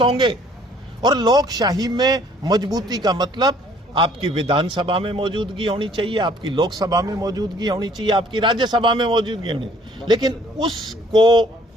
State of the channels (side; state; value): both; normal; correlation 0.59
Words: होंगे। और लोकशाही में मजबूती का मतलब आपकी विधानसभा में मौजूदगी होनी चाहिए, आपकी लोकसभा में मौजूदगी होनी चाहिए, आपकी राज्यसभा में मौजूदगी होनी चाहिए। लेकिन उसको